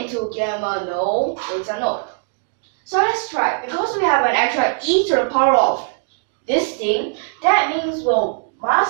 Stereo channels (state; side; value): silent; left; 66 dB below the other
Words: into gamma? No, beta, no. So let's try. Because we have an extra e to the power of this thing, that means we